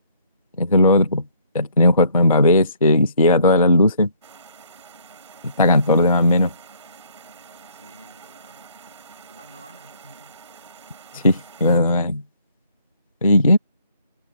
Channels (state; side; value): inverted; both; correlation -0.62